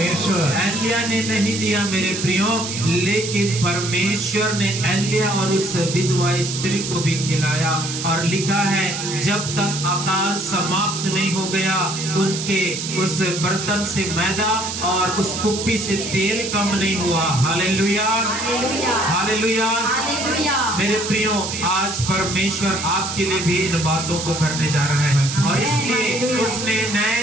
एलिया ने नहीं दिया मेरे प्रियो, लेकिन परमेश्वर ने एलिया और उस विधवा स्त्री को भी खिलाया। और लिखा है जब तक अकाल समाप्त नहीं हो गया, उनके उस बर्तन से मैदा और उस कुप्पी से तेल कम नहीं हुआ। Hallelujah, hallelujah, hallelujah. हालेलुया। मेरे प्रियो, आज परमेश्वर आपके लिए भी इन बातों को करने जा रहा है, और इसलिए उसने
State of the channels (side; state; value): right; noise; hiss, 5 dB below the sound